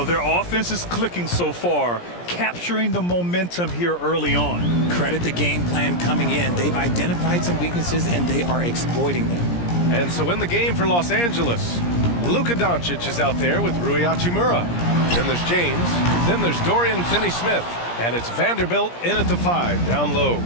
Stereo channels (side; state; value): right; late; 17 ms